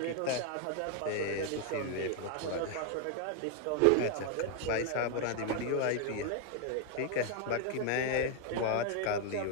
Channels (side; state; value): both; different; correlation 0.00